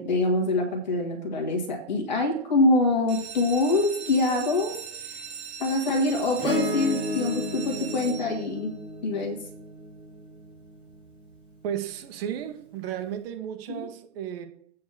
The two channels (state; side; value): normal; both; correlation -0.06